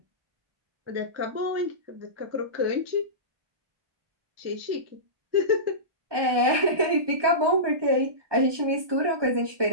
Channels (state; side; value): late; left; 1.2 ms